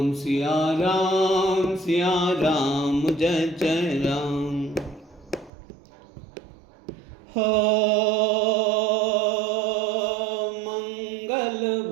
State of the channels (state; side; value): drops out; left; at 5.5 s